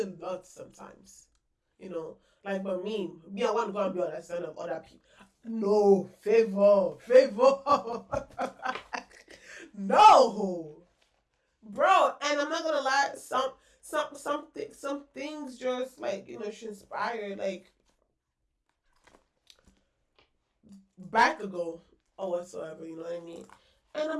lot sometimes. Like, but me, I want to go and be on the side of other people. No, favor. No, bro. And I'm not gonna lie. Some things just like she inspired like back ago or whatsoever. You know what I mean? And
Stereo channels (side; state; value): both; identical; correlation 1.00